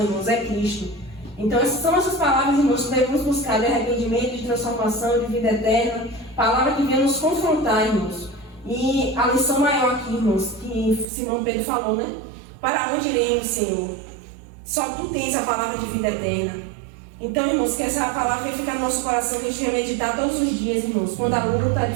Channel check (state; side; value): drops out; left; at 11.1 s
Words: irmãos, é Cristo. Então essas são essas palavras, irmãos, que devemos buscar de arrependimento, de transformação, de vida eterna. Palavra que vem nos confrontar, irmãos. E a lição maior aqui, irmãos, que Simão Pedro falou, né? Para onde iremos, Senhor? Só Tu tens a palavra de vida eterna. Então, irmãos, que essa palavra venha ficar no nosso coração, que a gente venha meditar todos os dias, irmãos. Quando a luta, a